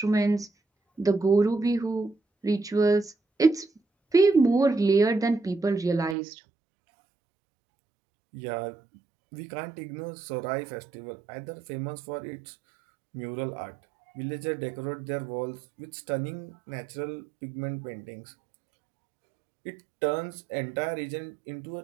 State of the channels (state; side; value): drops out; left; at 6.2 s